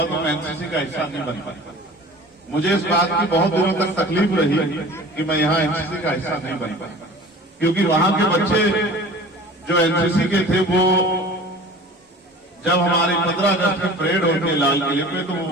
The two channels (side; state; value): both; normal; correlation 0.42